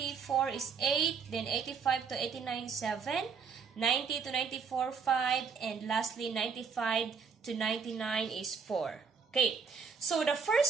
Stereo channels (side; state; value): left; quieter; 5.9 dB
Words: is 8. Then 85 to 89, 7. 90 to 94, 5. And lastly, 95 to 99 is 4. Okay, so the